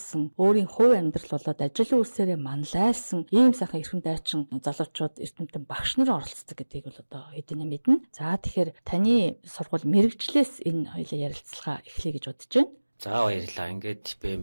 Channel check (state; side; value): inverted; both; correlation -1.00